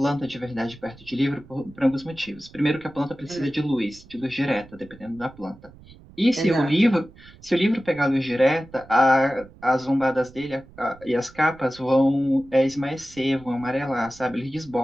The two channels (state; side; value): noise; right; rumble, 22 dB below the sound